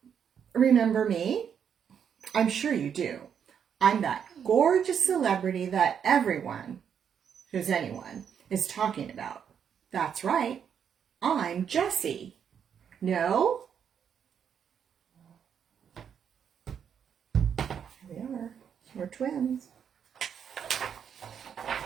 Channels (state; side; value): quieter; left; 7.9 dB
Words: Remember me? I'm sure you do. I'm that gorgeous celebrity that everyone, who's anyone, is talking about. That's right. I'm Jessie. No? Here we are. We're twins.